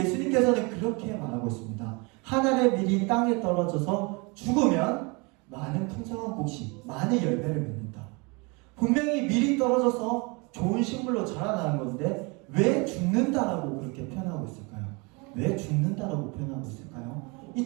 그렇게 말하고 있습니다. 한 알의 밀이 땅에 떨어져서 죽으면 많은 풍성한 곡식, 많은 열매를 맺는다. 분명히 밀이 떨어져서 좋은 식물로 자라나는 건데 왜 죽는다라고 그렇게 표현하고 있을까요? 왜 죽는다라고 표현하고 있을까요? 이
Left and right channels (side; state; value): left; quieter; 29.1 dB